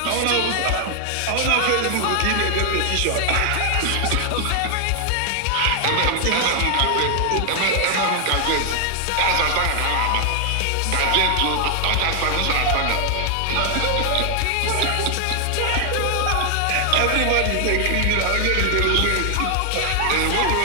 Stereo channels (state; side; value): different; both; correlation 0.00